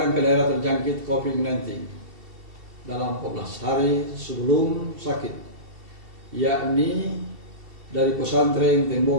ke daerah terjangkit COVID-19 dalam 14 hari sebelum sakit, yakni dari pesantren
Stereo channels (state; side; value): late; left; 2.7 ms